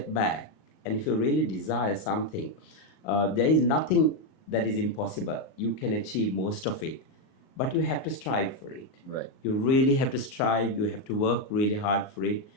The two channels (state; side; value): late; right; 38 ms